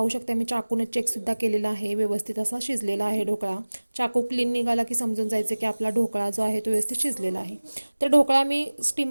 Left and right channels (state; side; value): inverted; both; correlation -1.00